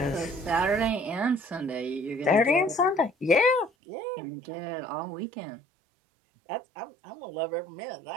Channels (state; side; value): drops out; left; at 3.7 s